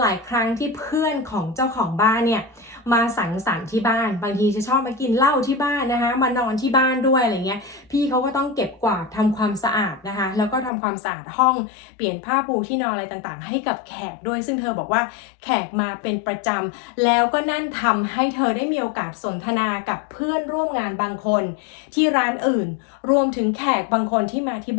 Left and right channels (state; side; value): drops out; right; at 10.7 s